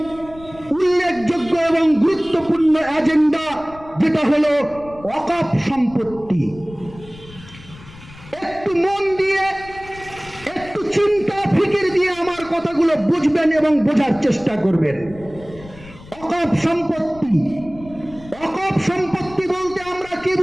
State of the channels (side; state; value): left; noise; rumble, 19 dB below the sound